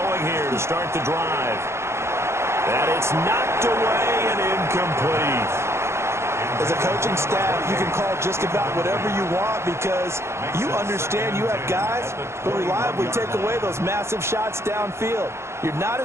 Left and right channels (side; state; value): left; late; 0.13 ms